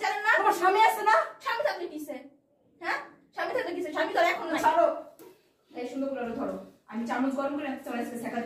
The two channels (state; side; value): identical; both; correlation 1.00